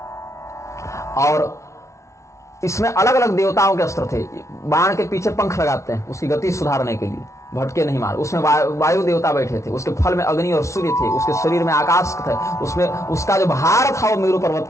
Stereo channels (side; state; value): right; late; 0.14 ms